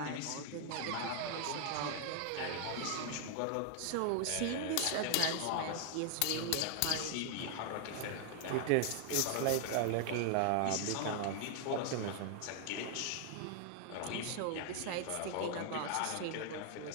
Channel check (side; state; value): both; different; correlation 0.00